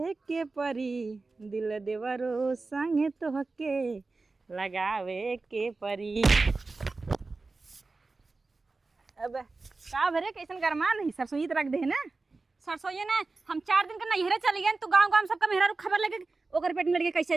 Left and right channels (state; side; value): quieter; left; 3.7 dB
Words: के परी दिल देवरो संगे तोहके लगावे के परी। अब का भरे कैसन गरमा नहीं सरसोई रख दे ना सरसोई ना हम 4 दिन का नैहरे चली गए तो गांव गांव सबका मेहरा खबर लगे ओकर पेट में लड़के